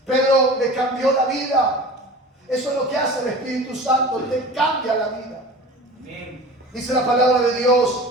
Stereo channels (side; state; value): both; normal; correlation 0.37